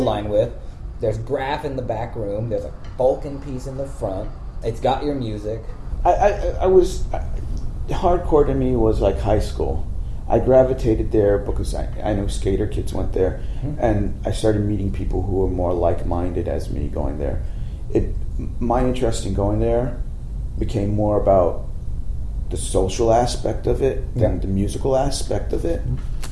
with. There's graph in the back room. There's a Vulcan piece in the front. It's got your music. Hardcore to me was like high school. I gravitated there because I know skater kids went there, and I started meeting people who were more like-minded as me going there. My interest in going there became more about the social aspect of it than the musical aspect of it.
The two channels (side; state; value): both; identical; correlation 1.00